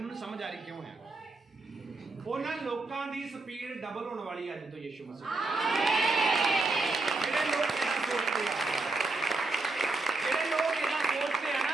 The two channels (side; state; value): left; quieter; 3.3 dB